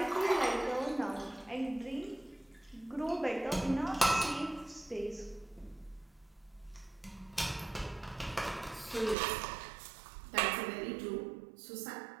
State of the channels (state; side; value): drops out; left; at 9.2 s